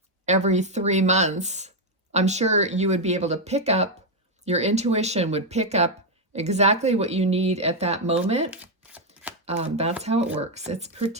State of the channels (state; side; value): normal; both; correlation 0.02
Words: every 3 months, I'm sure you would be able to pick up, your intuition would pick up exactly what you need at that moment. That's how it works. It's